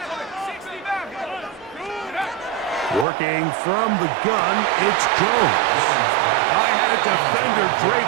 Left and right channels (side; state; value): left; drops out; at 3.1 s